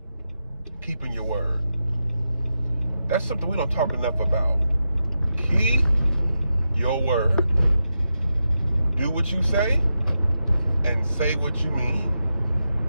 keeping your word. That's something we don't talk enough about. Keep your word. Do what you say and say what you mean.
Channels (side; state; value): both; inverted; correlation -0.88